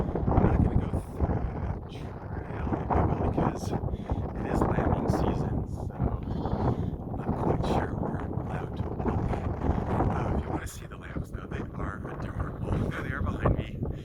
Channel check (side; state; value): both; identical; correlation 1.00